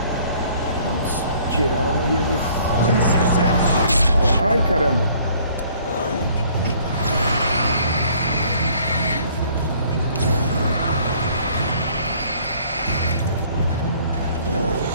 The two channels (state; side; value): inverted; both; correlation -0.58